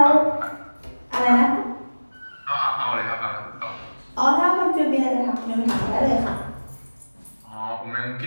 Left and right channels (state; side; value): inverted; both; correlation -1.00